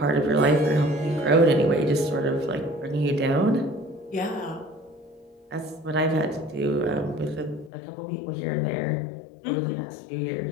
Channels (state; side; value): drops out; right; at 7.7 s